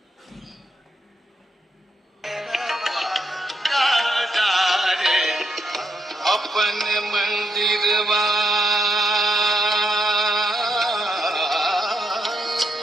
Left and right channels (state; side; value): normal; both; correlation 0.79